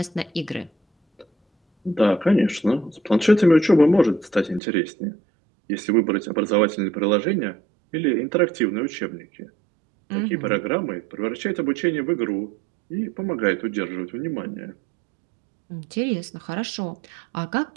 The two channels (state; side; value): drops out; left; at 4.6 s